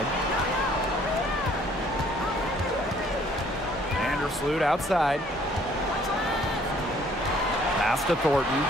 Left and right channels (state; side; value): normal; both; correlation 0.60